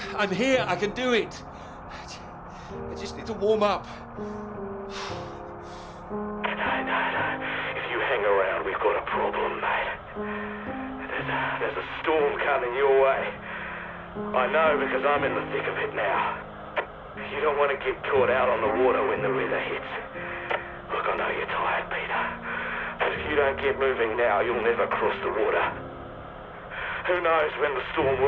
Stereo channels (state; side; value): identical; both; correlation 1.00